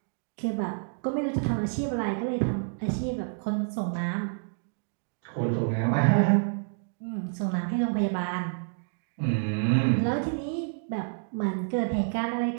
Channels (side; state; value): left; silent; digital silence